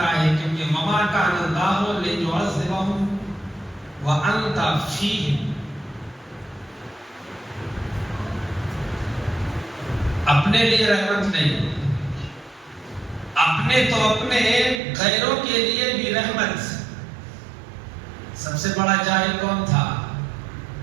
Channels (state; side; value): drops out; left; at 14.8 s